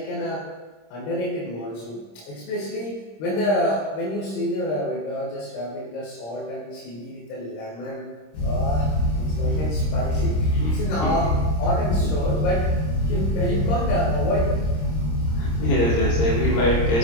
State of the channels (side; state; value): right; late; 26 ms